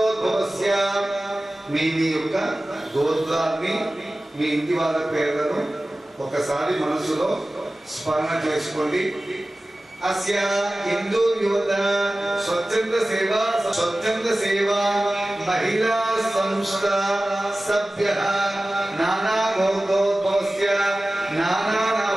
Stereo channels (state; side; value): normal; both; correlation 0.96